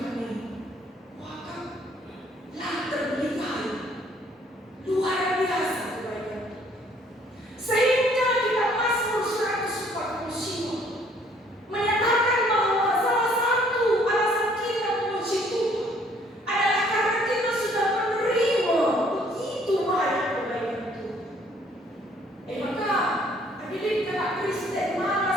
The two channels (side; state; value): both; normal; correlation 0.61